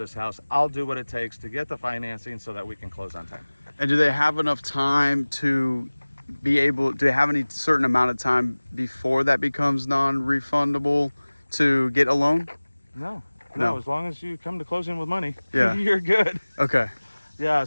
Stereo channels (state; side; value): inverted; both; correlation -1.00